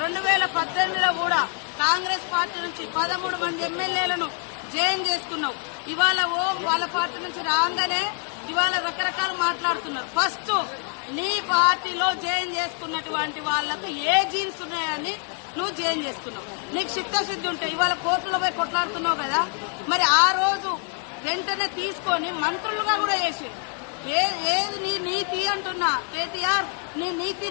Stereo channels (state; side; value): quieter; right; 36.1 dB